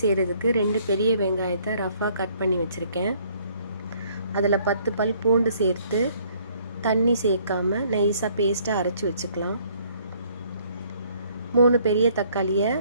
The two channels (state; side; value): inverted; both; correlation -0.62